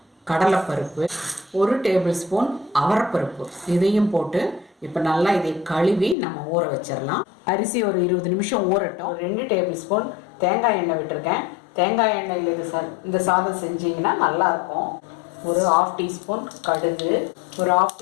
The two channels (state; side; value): drops out; right; at 6.2 s